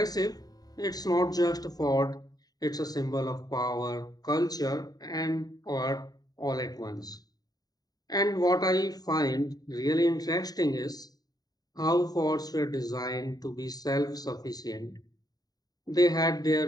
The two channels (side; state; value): right; late; 0.18 ms